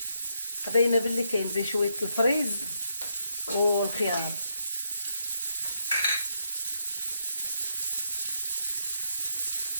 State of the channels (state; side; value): inverted; both; correlation -0.78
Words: قضينا باللي كاين بشويه الفريز والخيار.